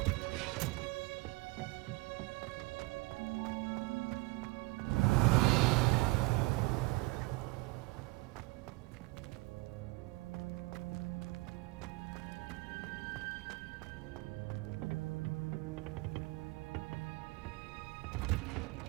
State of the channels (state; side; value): quieter; left; 23.6 dB